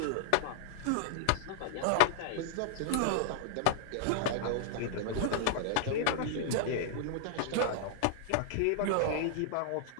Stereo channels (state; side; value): different; both; correlation -0.01